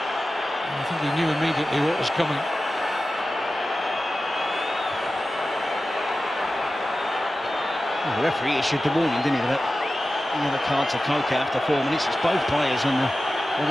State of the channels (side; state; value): both; normal; correlation 0.94